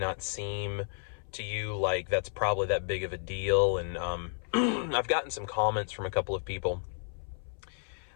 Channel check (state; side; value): silent; right; 56 dB below the other